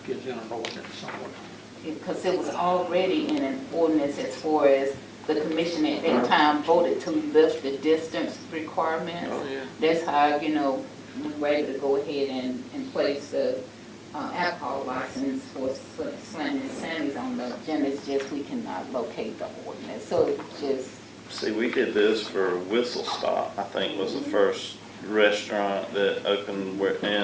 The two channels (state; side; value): identical; both; correlation 1.00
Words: is in an ordinance somewhere. Because it was already in an ordinance as far as the commission at that time voted to lift the distance requirements. That's how, we were able to go ahead and place the alcohol license for Slam and Sammy's on the agenda. It's just we cannot locate the ordinance. So it's just. see, we did this for Whistle Stop, I think was the first restaurant that opened